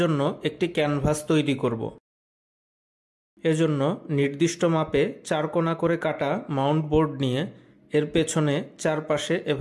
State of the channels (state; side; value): identical; both; correlation 1.00